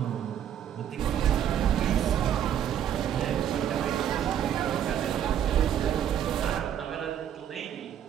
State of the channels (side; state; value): left; quieter; 9.7 dB